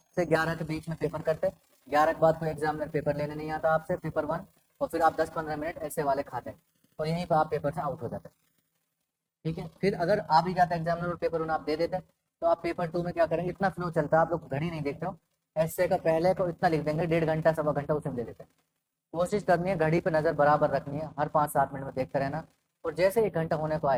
से 11 के बीच में पेपर करते, 11 के बाद कोई एग्जामिनर पेपर लेने नहीं आता आपसे, पेपर 1, और फिर आप 10-15 मिनट ऐसे वाले खाते हैं और यहीं पर आप पेपर से आउट हो जाते हैं, ठीक है। फिर अगर आ भी जाता है एग्जामिनर और पेपर 1 आप दे देते हैं, तो आप पेपर 2 में क्या करेंगे, इतना फ्लो चलता है, आप लोग घड़ी नहीं देखते हो, ऐसे का पहले को इतना लिख देंगे, 1.5 घंटा 1.25 घंटा उसमें दे देते हैं। कोशिश करनी है घड़ी पे नज़र बराबर रखनी है, हर 5-7 मिनट में देखते रहना, और जैसे 1 घंटा होने को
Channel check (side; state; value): both; identical; correlation 1.00